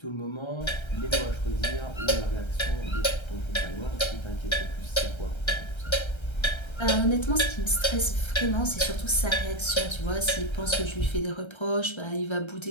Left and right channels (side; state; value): right; late; 1.3 ms